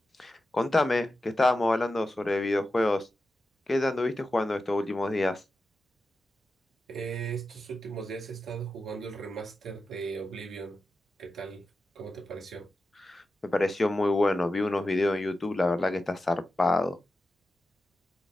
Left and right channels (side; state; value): both; normal; correlation 0.91